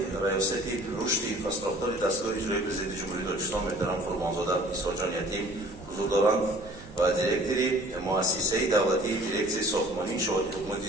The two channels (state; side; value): noise; right; hum, 19 dB below the sound